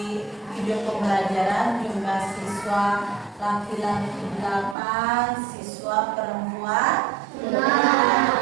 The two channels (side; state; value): left; drops out; at 4.8 s